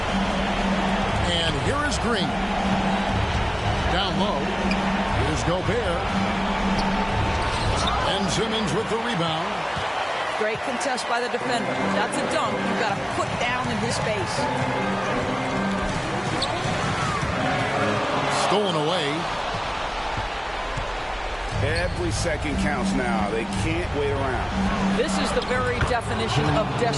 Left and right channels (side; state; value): both; identical; correlation 1.00